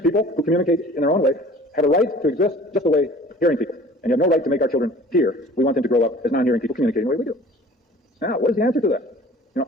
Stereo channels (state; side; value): normal; both; correlation 0.47